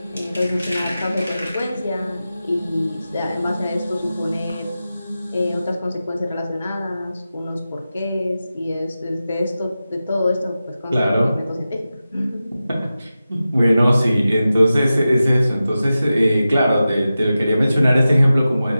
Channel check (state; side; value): inverted; both; correlation -0.93